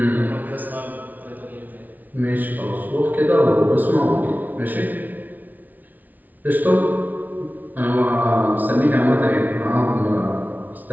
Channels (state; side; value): late; left; 0.079 ms